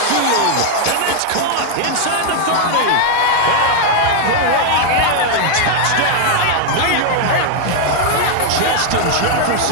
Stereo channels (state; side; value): different; both; correlation 0.00